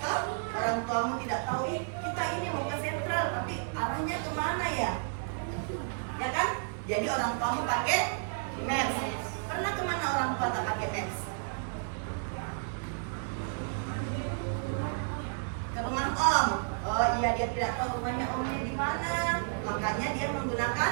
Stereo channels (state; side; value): silent; left; digital silence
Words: orang tuamu tidak tahu, kita ini mau ke sentral, tapi arahnya kemana ya? Ya kan? Jadi orang tuamu pakai Maps. Pernah kemana orang tua tak pakai Maps? Ke rumah om. Oh iya, dia tidak tahu rumahnya omnya di mana, makanya dia menggunakan